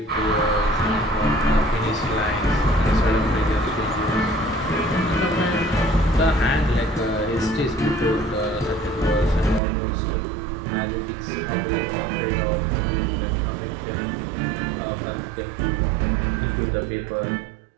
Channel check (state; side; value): drops out; left; at 9.6 s